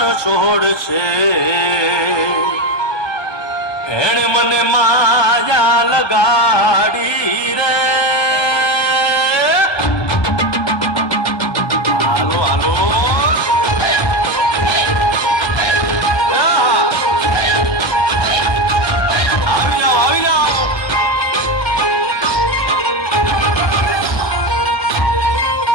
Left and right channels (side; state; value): right; late; 1.2 ms